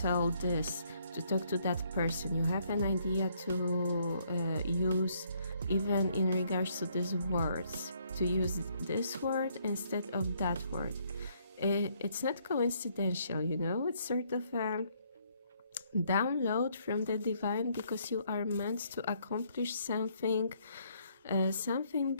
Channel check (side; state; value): both; inverted; correlation -0.68